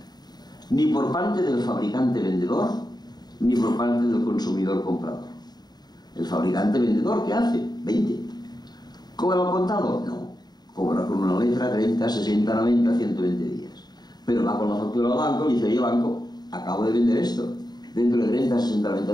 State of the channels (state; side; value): late; right; 0.20 ms